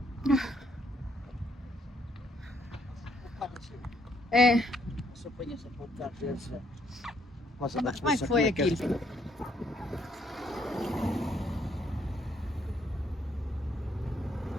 É. Como é que foi aquilo?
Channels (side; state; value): both; normal; correlation 0.71